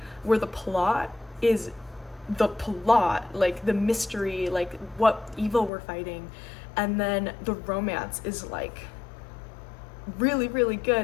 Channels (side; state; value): right; drops out; at 5.7 s